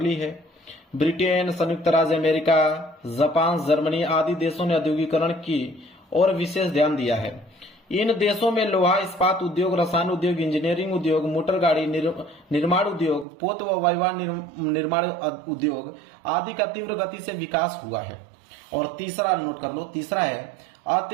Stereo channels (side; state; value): left; drops out; at 13.2 s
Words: ली है। ब्रिटेन, संयुक्त राज्य अमेरिका, जापान, जर्मनी आदि देशों ने औद्योगिकरण की ओर विशेष ध्यान दिया है। इन देशों में लोहा इस्पात उद्योग, रसायन उद्योग, इंजीनियरिंग उद्योग, मोटर गाड़ी निर्माण उद्योग, पोत व वायुयान निर्माण उद्योग आदि का तीव्र गति से विकास हुआ है। और तीसरा नोट कर लो, तीसरा है